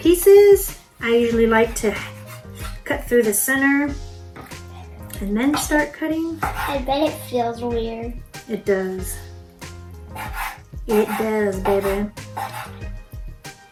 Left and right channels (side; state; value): both; identical; correlation 1.00